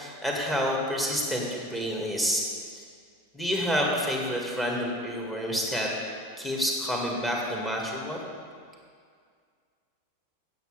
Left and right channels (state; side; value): normal; both; correlation 0.47